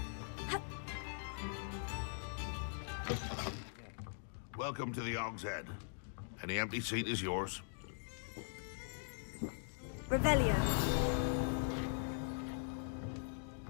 Welcome to the Hog's Head. Any empty seat is yours. Revelio.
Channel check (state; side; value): silent; right; digital silence